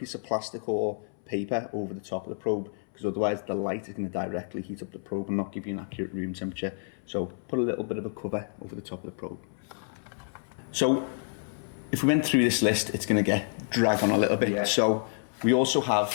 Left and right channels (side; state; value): right; silent; 59 dB below the other